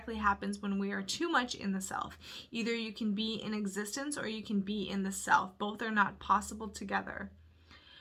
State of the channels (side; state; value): both; identical; correlation 1.00